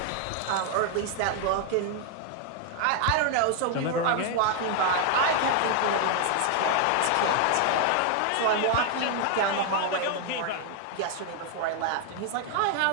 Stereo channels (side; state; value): both; different; correlation 0.00